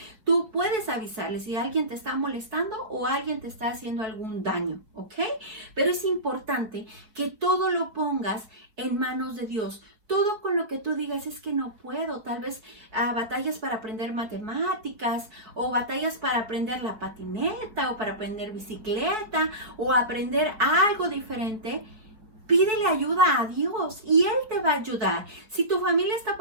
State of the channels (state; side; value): late; left; 4.6 ms